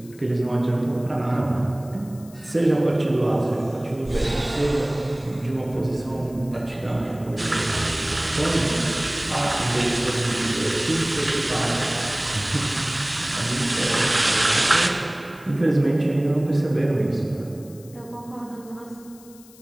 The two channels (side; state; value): left; noise; hiss, 24 dB below the sound